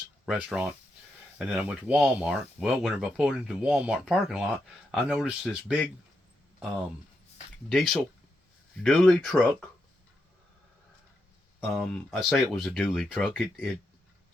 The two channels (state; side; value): normal; both; correlation 0.83